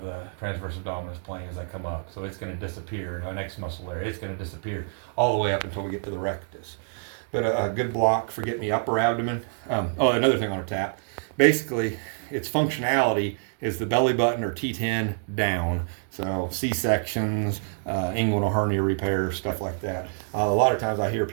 plane as I come up. So it's going to disappear. Our next muscle there, it's going to disappear all the way up until we get to the rectus. But a good block for getting the upper abdomen. Another thing on a tap. Basically, its functionality is the belly button or T10 down. So C-sections, inguinal hernia repair, stuff like that. A lot of times I hear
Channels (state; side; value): silent; left; digital silence